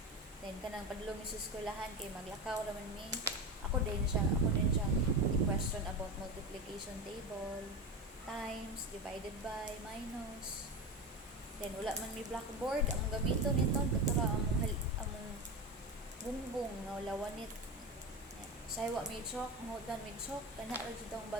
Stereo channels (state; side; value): normal; both; correlation 0.22